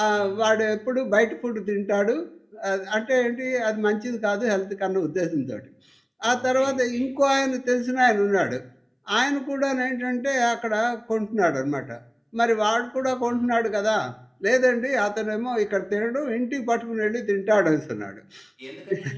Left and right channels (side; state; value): both; identical; correlation 1.00